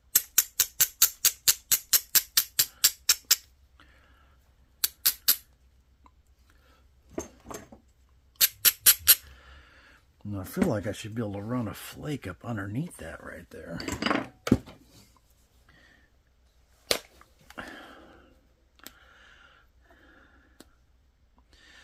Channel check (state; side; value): identical; both; correlation 1.00